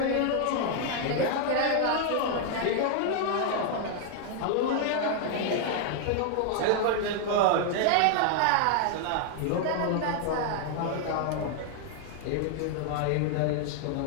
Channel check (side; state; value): both; different; correlation 0.00